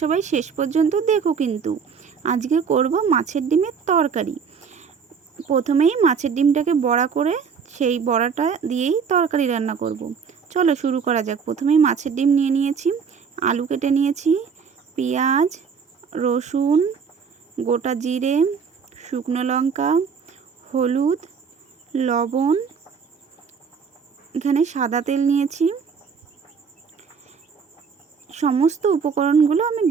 সবাই শেষ পর্যন্ত দেখো কিন্তু। আজকে করব মাছের ডিমের তরকারি। প্রথমেই মাছের ডিমটাকে বড়া করে সেই বড়াটা দিয়েই তরকারি রান্না করব। চলো শুরু করা যাক। প্রথমেই মাছের ডিম নিয়ে নিয়েছি, আলু কেটে নিয়েছি, পেঁয়াজ, রসুন, গোটা জিরে, শুকনো লঙ্কা, হলুদ, লবণ, এখানে সাদা তেল নিয়েছি। সমস্ত উপকরণগুলো আমি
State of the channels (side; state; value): left; quieter; 6.2 dB